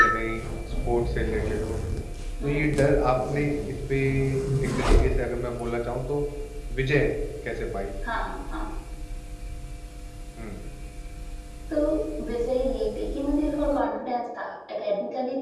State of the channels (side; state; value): both; identical; correlation 1.00